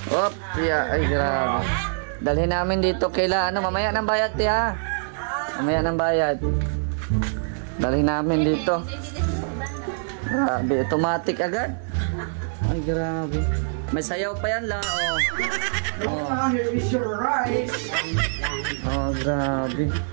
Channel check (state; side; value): silent; left; digital silence